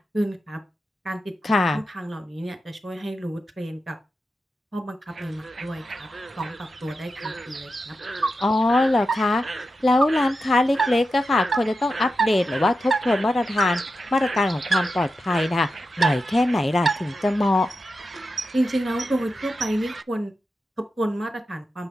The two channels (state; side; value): normal; both; correlation 0.90